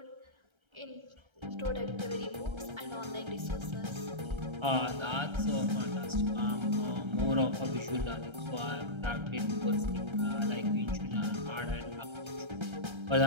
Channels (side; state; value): left; late; 1.3 ms